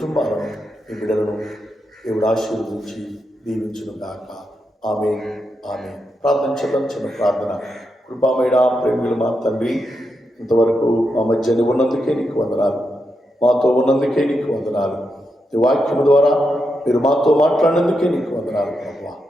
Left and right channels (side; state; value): both; normal; correlation 0.85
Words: మీ బిడ్డలను దేవుడు ఆశీర్వదించి దీవించును గాక. ఆమేన్, ఆమేన్. ప్రార్థన చేద్దాం. చిన్న ప్రార్థన. కృపామయుడ, ప్రేమికులు మా తండ్రి, ఇంతవరకు మా మధ్య ఉన్నందుకే నీకు వందనాలు, మాతో ఉన్నందుకే నీకు వందనాలు. ఈ వాక్యము ద్వారా మీరు మాతో మాట్లాడినందుకే నీకు వందనాలు ప్రభువా.